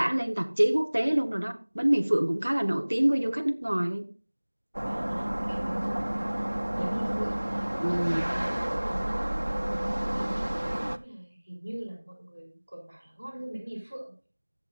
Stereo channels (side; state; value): both; inverted; correlation -1.00